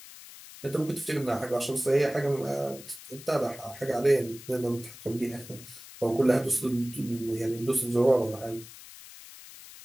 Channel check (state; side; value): noise; left; hiss, 17 dB below the sound